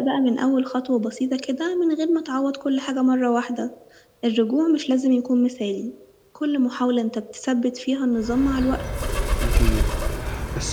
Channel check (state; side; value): identical; both; correlation 1.00